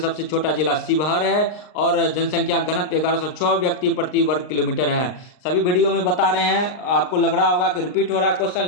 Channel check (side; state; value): right; late; 39 ms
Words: छोटा जिला शिवहर है। और जनसंख्या घनत्व 1106 व्यक्ति प्रति वर्ग किलोमीटर है। सभी वीडियो में बता रहे हैं, आपको लग रहा होगा कि रिपीट हो रहा है क्वेश्चन,